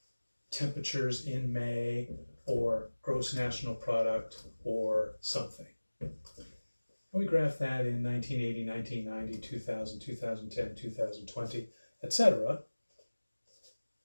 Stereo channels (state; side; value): inverted; both; correlation -1.00